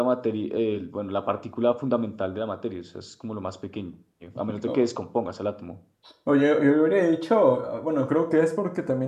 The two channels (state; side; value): identical; both; correlation 1.00